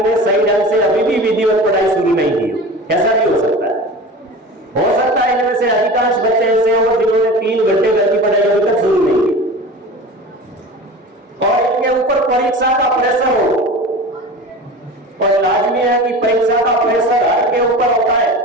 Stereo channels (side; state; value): both; normal; correlation 0.34